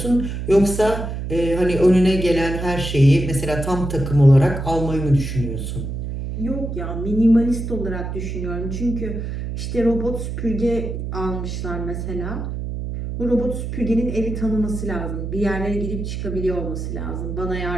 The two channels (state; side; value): noise; right; hum, 5 dB below the sound